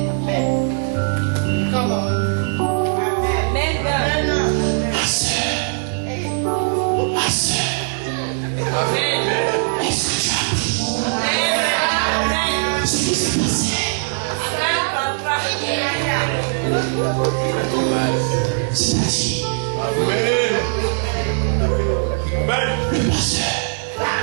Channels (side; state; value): left; silent; 55 dB below the other